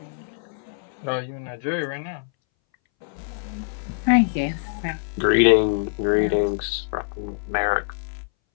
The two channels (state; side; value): silent; right; 61 dB below the other